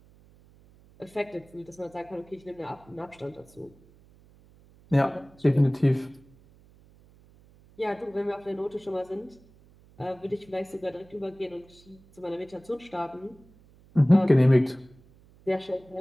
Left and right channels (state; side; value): noise; right; hum, 27 dB below the sound